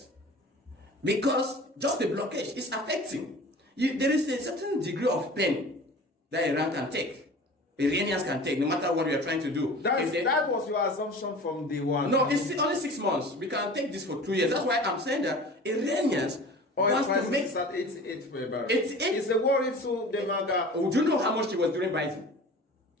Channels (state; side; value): normal; both; correlation 0.40